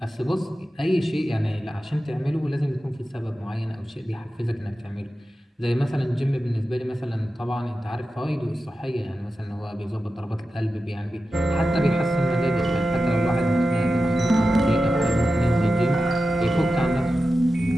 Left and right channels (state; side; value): normal; both; correlation 0.92